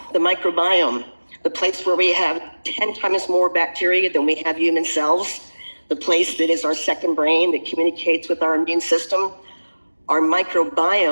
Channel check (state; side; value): inverted; both; correlation -1.00